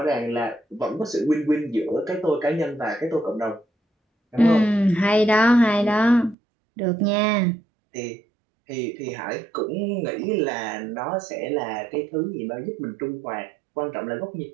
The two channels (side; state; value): left; drops out; at 6.4 s